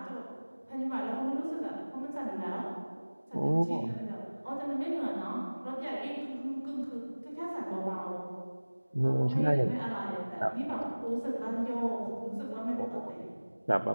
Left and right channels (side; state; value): both; inverted; correlation -1.00